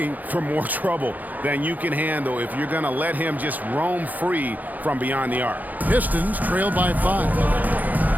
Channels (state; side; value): late; left; 0.081 ms